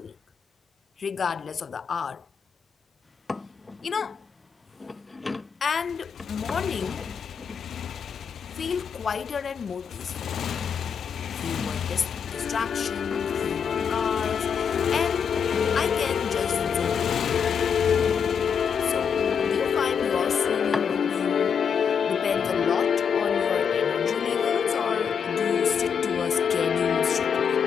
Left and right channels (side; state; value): right; quieter; 6.9 dB